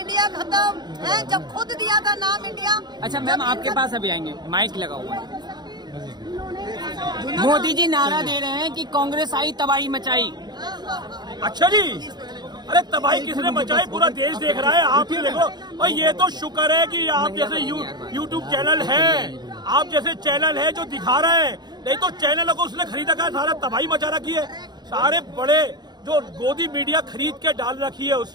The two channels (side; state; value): left; late; 0.20 ms